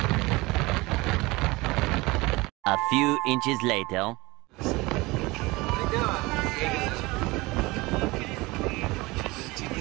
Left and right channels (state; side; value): quieter; left; 22.5 dB